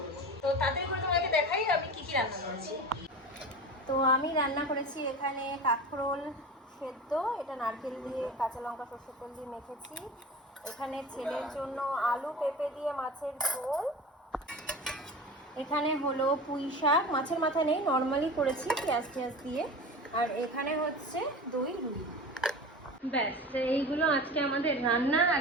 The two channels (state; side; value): normal; both; correlation 0.32